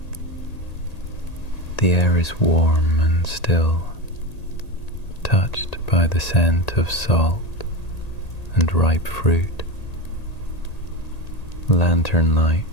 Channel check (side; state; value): right; late; 1.8 ms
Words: The air is warm and still, touched by the scent of salt and ripe fruit. Lantern